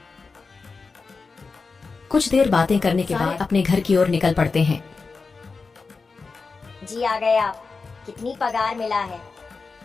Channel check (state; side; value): quieter; right; 4.4 dB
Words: कुछ देर बातें करने के बाद अपने घर की ओर निकल पड़ते हैं। जी आ गए आप। कितनी पगार मिला है?